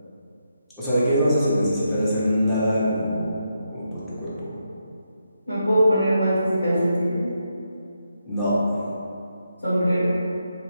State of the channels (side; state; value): both; inverted; correlation -0.82